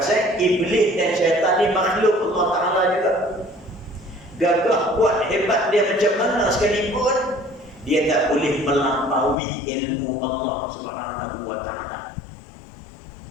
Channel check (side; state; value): right; drops out; at 9.3 s